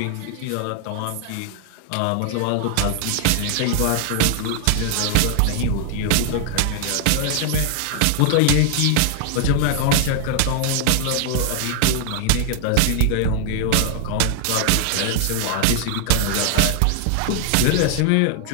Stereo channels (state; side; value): different; both; correlation 0.00